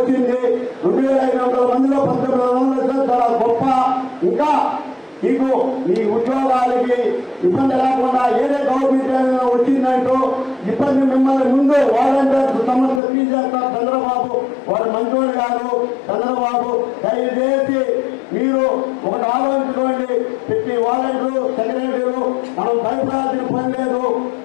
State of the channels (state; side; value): drops out; right; at 13.0 s